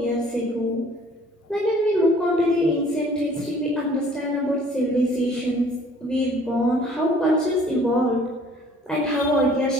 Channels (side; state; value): both; normal; correlation 0.55